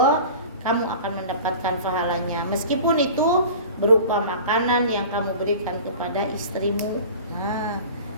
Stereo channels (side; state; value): both; inverted; correlation -0.39